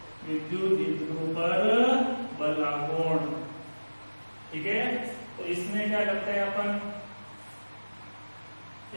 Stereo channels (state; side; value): inverted; both; correlation -1.00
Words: विद्युत द्विध्रुव पर बल आघूर्ण, ठीक है। तो इसमें क्या करते हैं अपन,